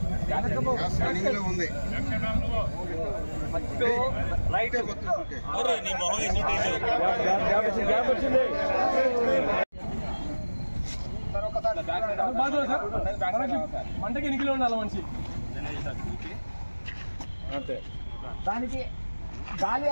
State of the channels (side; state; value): both; inverted; correlation -1.00